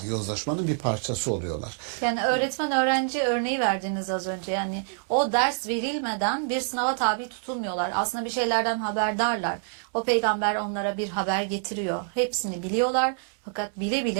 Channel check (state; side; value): silent; left; 60 dB below the other